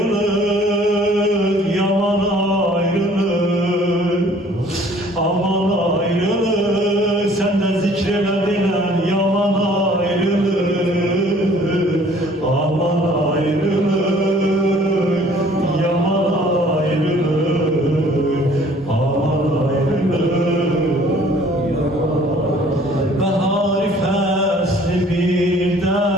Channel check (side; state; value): both; normal; correlation 0.55